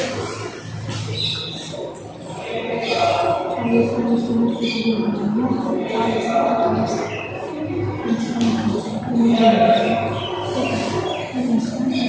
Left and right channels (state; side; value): identical; both; correlation 1.00